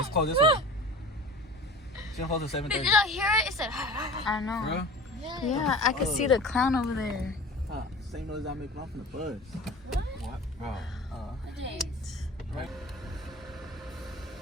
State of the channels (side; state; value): both; normal; correlation 0.39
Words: closed this way. She don't close at 7:30. Did y'all hear it? It said. I know. Bro? Yeah, I can see the clown over there. Same noise I make off in the buzz. What? Bro. Right.